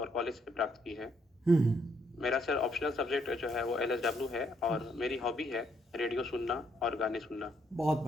कॉलेज से प्राप्त की है। मेरा सर ऑप्शनल सब्जेक्ट जो है वो LSW है और मेरी हॉबी है रेडियो सुनना और गाने सुनना। बहुत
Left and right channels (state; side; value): normal; both; correlation 0.71